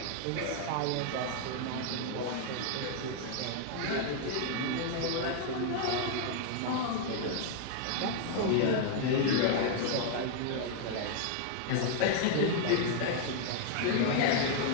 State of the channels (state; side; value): different; both; correlation 0.00